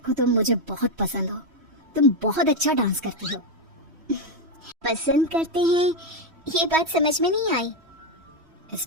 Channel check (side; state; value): left; late; 3.1 ms